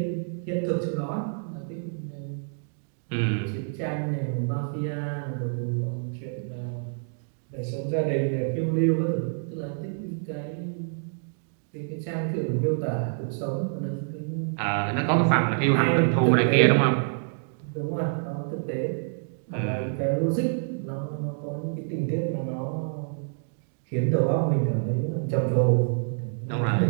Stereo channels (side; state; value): left; silent; digital silence